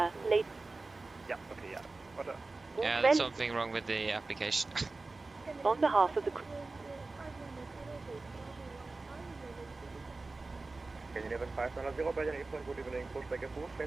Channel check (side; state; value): left; quieter; 3.5 dB